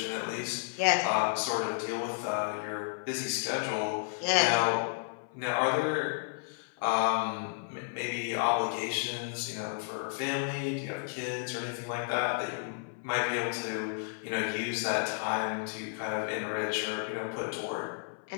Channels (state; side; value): silent; right; 56 dB below the other